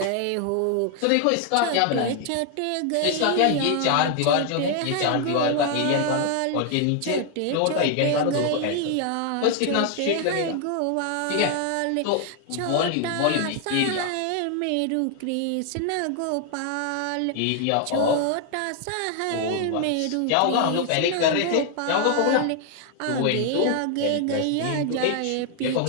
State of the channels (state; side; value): different; both; correlation 0.00